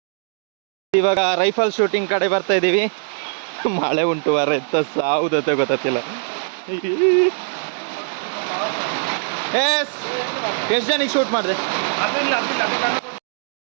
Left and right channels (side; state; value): left; silent; digital silence